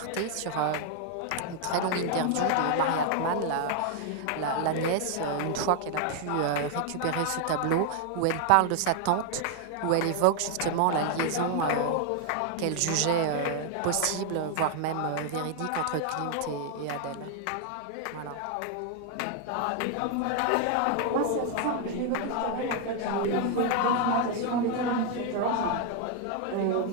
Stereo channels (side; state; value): both; different; correlation 0.00